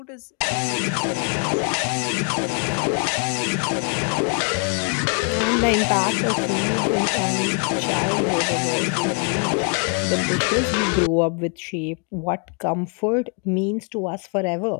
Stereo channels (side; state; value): right; quieter; 38.7 dB